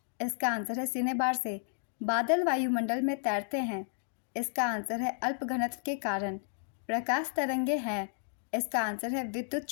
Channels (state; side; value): silent; right; digital silence